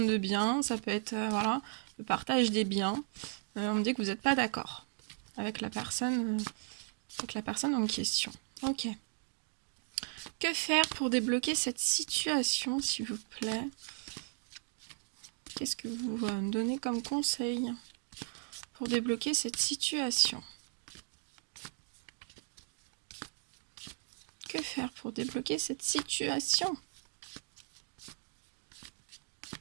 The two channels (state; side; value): silent; left; 54 dB below the other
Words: de biens, ça peut être voilà, le partage des biens. On me dit que vous n'êtes pas d'accord avec la personne en question. Ok. Que faire pour débloquer cette situation, s'il vous plaît? Qu'est-ce que vous donnez comme conseil pour débloquer cette situation? Que faire pour débloquer cette situation?